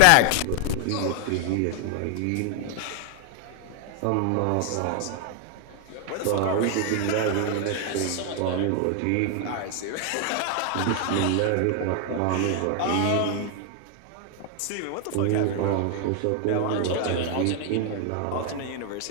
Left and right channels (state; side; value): different; both; correlation 0.00